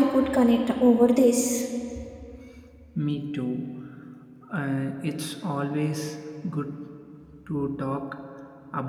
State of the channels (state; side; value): identical; both; correlation 1.00